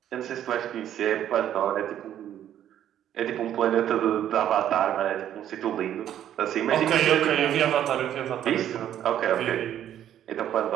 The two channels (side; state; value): left; quieter; 10.8 dB